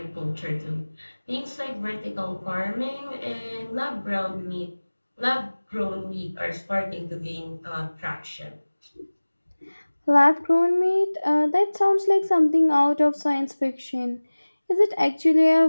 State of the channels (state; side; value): inverted; both; correlation -1.00